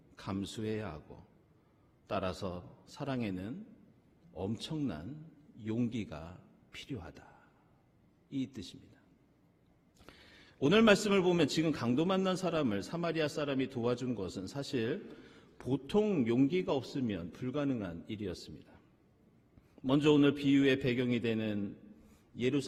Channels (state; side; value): identical; both; correlation 1.00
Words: 감수해야 하고 따라서 사랑에는 엄청난 용기가 필요하다. 이 뜻입니다. 오늘 말씀을 보면 지금 강도 만난 사람을 사마리아 사람이 도와준 것은 사실 보통 용기가 없으면 불가능한 일이었습니다. 먼저 오늘 비유의 배경이 되는